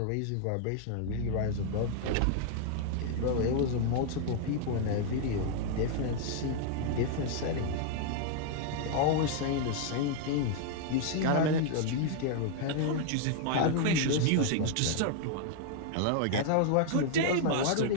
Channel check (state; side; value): different; both; correlation -0.01